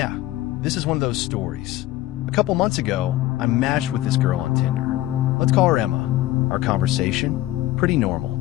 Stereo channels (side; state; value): right; quieter; 15.8 dB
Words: this is one of those stories. A couple months ago, I matched with this girl on Tinder. Let's call her Emma. Our conversation? Pretty